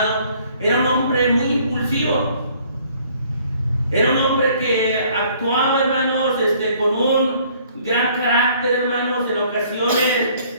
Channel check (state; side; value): inverted; both; correlation -0.59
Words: era un hombre muy impulsivo. Era un hombre que actuaba, hermanos, con un gran carácter, hermanos. En ocasiones